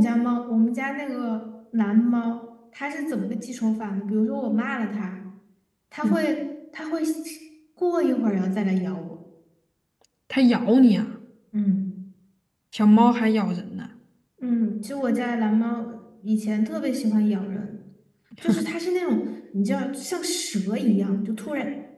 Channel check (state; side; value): identical; both; correlation 1.00